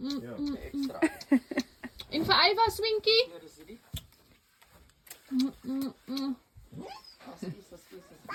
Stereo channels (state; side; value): identical; both; correlation 1.00